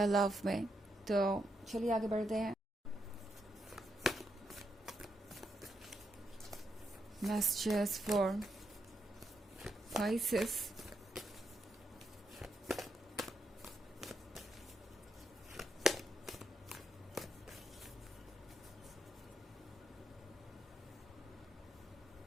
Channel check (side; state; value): both; normal; correlation 0.81